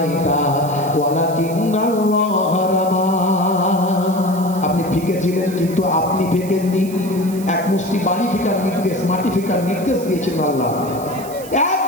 ওয়ালাকিন্নাল্লাহ রামা। আপনি ফিকেছিলেন কিন্তু আপনি ফেকেননি। এক মুষ্টি বাড়ি ফেকার নির্দেশ, মাটি ফেকার নির্দেশ দিয়েছেন আল্লাহ। এক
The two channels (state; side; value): noise; right; hiss, 16 dB below the sound